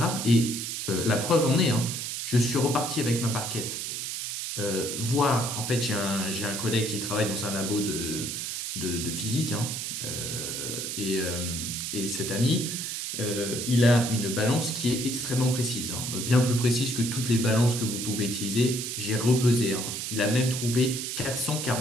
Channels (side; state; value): right; noise; hiss, 4 dB below the sound